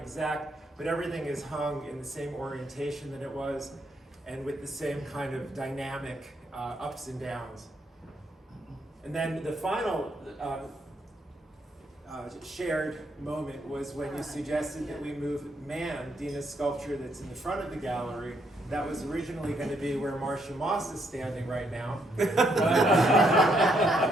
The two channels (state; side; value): normal; both; correlation 0.74